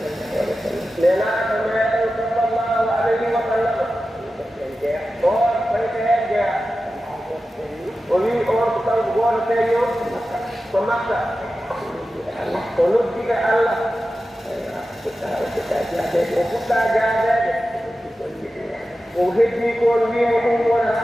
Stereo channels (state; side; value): normal; both; correlation 0.93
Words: nenaaɗo meɗen sallallahu alayhi wa sallam on fayta heen jeya o wi on ko kanko gooto feeño ko makka o noddiɓe allah o fuɗɗa jaadeede o heddi kon wiimo ɗum